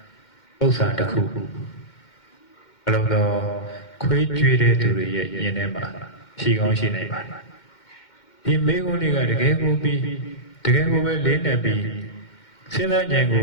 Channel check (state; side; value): late; right; 2.1 ms